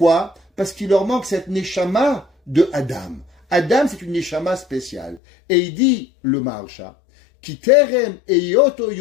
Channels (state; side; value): drops out; right; at 5.2 s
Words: Parce qu'il leur manque cette neshama de Adam. Adam, c'est une neshama spéciale. Et il dit, le Maharsha, Ki terem eyoto